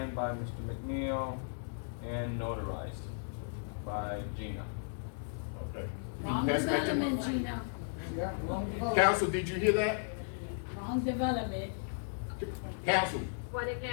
by Mr. McNeil and notarized by Gina. Okay. Wrong Pass that to- development, Gina. Council, did you hear that? Wrong development. Council, What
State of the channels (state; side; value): silent; right; digital silence